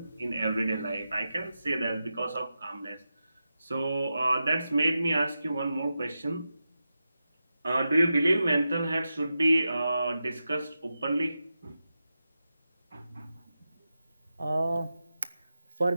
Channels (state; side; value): inverted; both; correlation -0.91